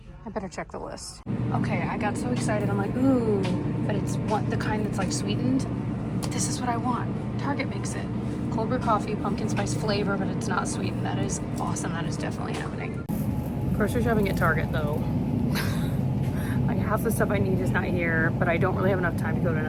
I better check the list. Okay, I got so excited. I'm like, ooh, but it's the kind that's like sweetened. This is what I want. Target makes it. Cold brew coffee, pumpkin spice flavor, but it's not sweetened. That is awesome. That is definitely happening. Grocery shopping at Target though. Like half the stuff I need is not here, but I don't really have enough time to go to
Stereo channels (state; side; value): identical; both; correlation 1.00